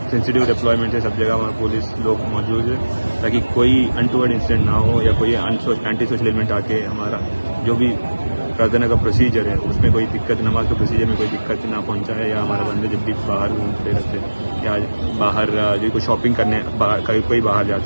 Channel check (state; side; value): inverted; both; correlation -1.00